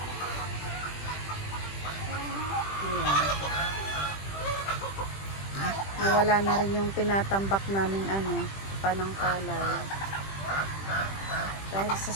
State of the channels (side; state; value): right; late; 20 ms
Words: Nawala na rin yung tinatambak namin panangkalay. Dahil sa